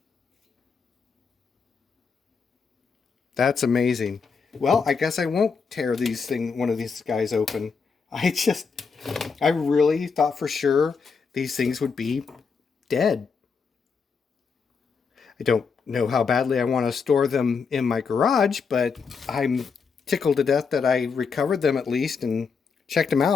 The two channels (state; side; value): quieter; right; 5.5 dB